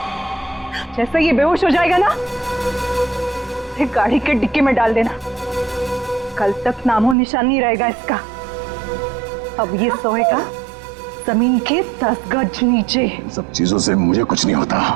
जैसे ये बेहोश हो जाएगा ना, एक गाड़ी के डिक्की में डाल देना। कल तक नामो निशान नहीं रहेगा इसका। अब ये सोएगा जमीन के 10 गज नीचे। सब चीजों से मुझे कुछ नहीं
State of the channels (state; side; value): drops out; left; at 7.2 s